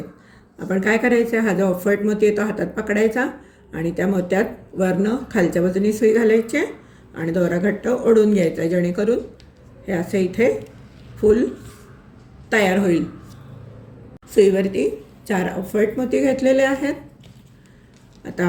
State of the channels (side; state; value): both; identical; correlation 1.00